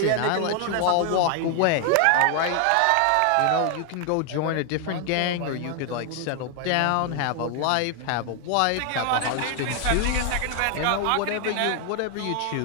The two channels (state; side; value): different; both; correlation 0.00